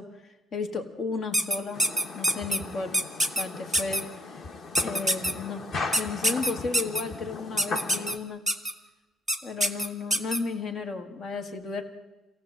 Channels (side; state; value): both; normal; correlation 0.63